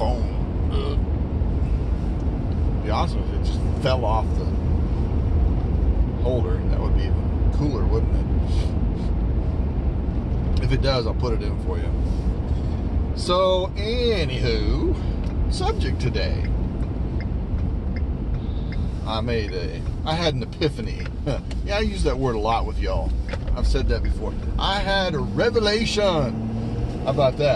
It'd be awesome if it just fell off the holder. That would be even cooler, wouldn't it? If it does, I'll put it in for you. So, anywho, subject today. I had an epiphany. Yeah, I use that word a lot with y'all. I've said that before. I had a revelation. How about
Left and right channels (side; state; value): both; identical; correlation 1.00